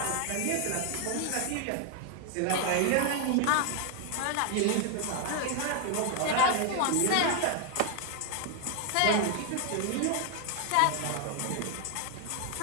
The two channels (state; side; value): different; both; correlation 0.00